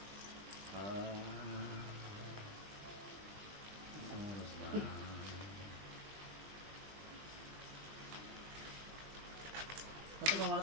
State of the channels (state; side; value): late; left; 20 ms